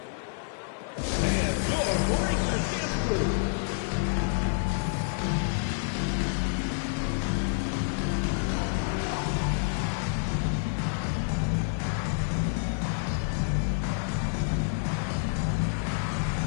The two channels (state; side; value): silent; right; 58 dB below the other